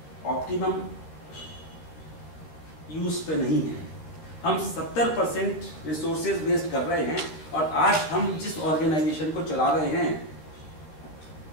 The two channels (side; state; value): right; late; 13 ms